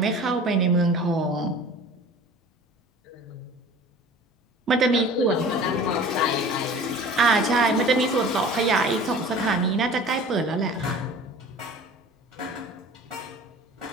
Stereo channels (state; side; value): normal; both; correlation 0.42